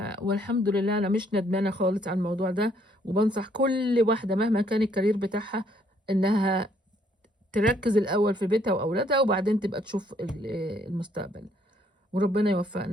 والحمد لله انا مش ندمانة خالص على الموضوع ده، وبنصح كل واحدة مهما كان الكارير بتاعها انها تركز الاول في بيتها واولادها، وبعدين تبقى تشوف المستقبل. وربنا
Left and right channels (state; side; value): normal; both; correlation 0.67